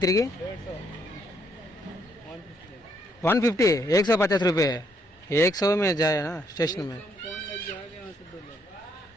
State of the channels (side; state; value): both; normal; correlation 0.72